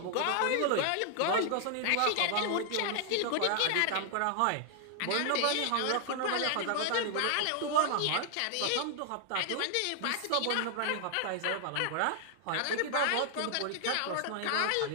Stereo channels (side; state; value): both; different; correlation 0.00